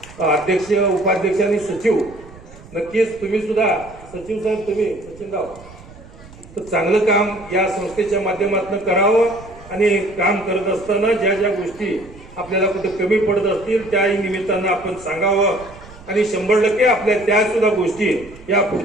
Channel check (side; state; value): right; noise; rumble, 20 dB below the sound